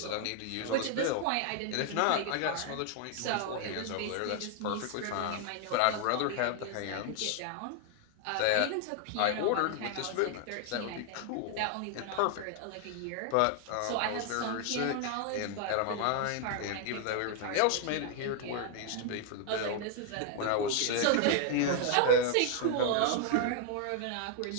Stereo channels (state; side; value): different; both; correlation 0.00